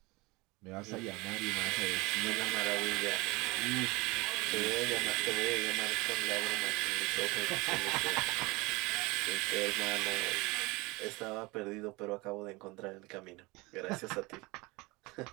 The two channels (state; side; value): quieter; left; 24.0 dB